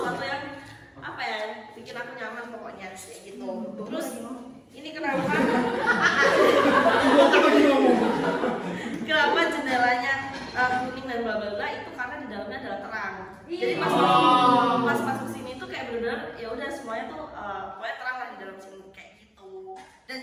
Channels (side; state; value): both; identical; correlation 1.00